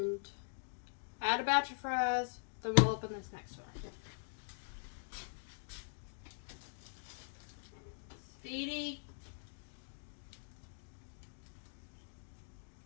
add a batch of fries, then we'll open this next one. Speedy.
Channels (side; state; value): right; silent; digital silence